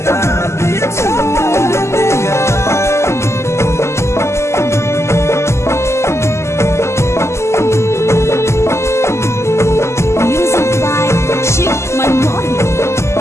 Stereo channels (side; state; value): right; late; 0.13 ms